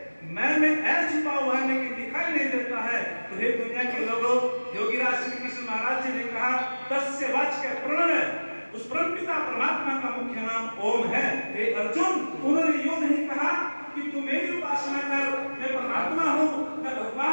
मैं में ऐ छुपा हुआ है लेकिन दिखाई नहीं देता है, तो हे दुनिया के लोगों, योगीराज श्री कृष्ण महाराज जी ने कहा तस्य वाच्य प्रणव, उस परमपिता परमात्मा का मुख्य नाम ओम है। हे अर्जुन, उन्होंने यूं नहीं कहा कि तू मेरी उपासना कर, मैं परमात्मा हूँ, मैं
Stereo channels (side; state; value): both; inverted; correlation -1.00